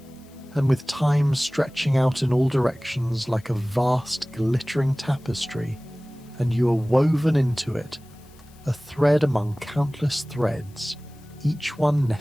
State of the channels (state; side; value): noise; left; hiss, 28 dB below the sound